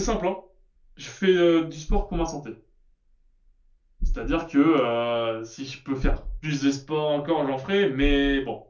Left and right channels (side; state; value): both; identical; correlation 1.00